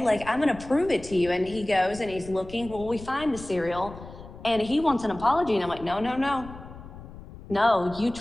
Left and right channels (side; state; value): left; noise; rumble, 16 dB below the sound